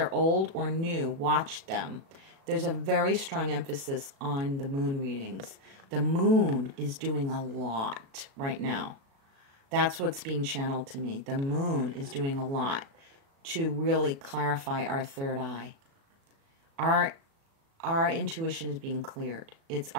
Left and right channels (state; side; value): late; left; 36 ms